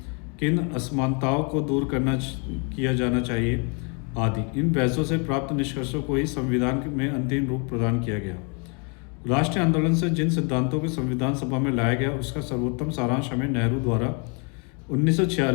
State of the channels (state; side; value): quieter; right; 35.4 dB